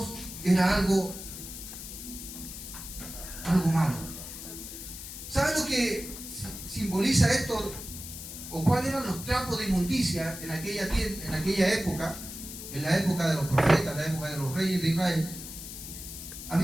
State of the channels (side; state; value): left; noise; hiss, 10 dB below the sound